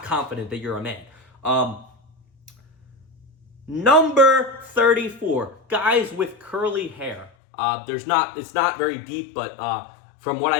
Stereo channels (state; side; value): drops out; right; at 7.3 s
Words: confident that you're a man. Number 34, guys with curly hair. It's not very deep, but from what